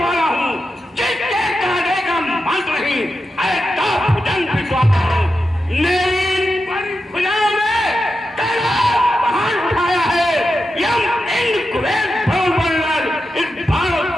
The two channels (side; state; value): both; normal; correlation 0.89